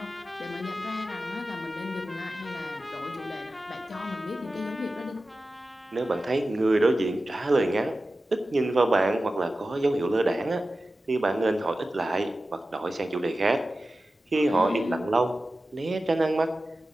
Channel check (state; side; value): normal; both; correlation 0.94